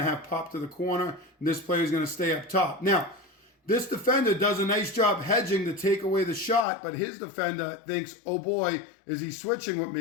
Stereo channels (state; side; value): drops out; right; at 6.7 s